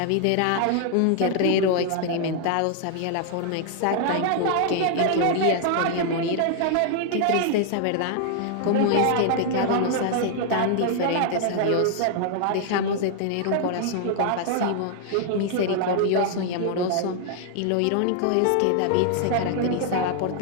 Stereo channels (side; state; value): both; different; correlation 0.00